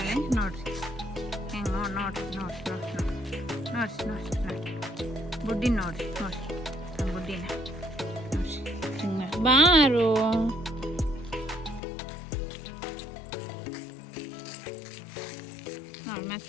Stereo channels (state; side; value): drops out; right; at 11.8 s